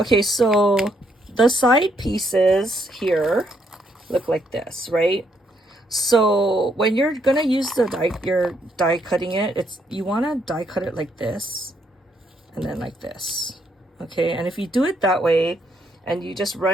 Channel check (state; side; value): normal; both; correlation 0.73